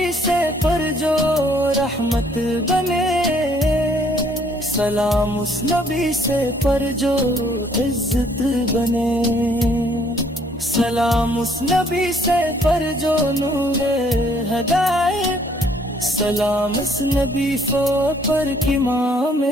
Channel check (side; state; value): both; normal; correlation 0.63